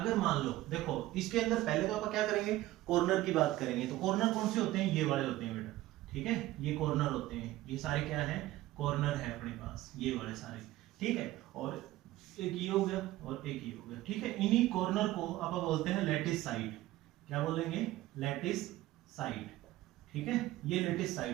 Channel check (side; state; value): left; quieter; 16.3 dB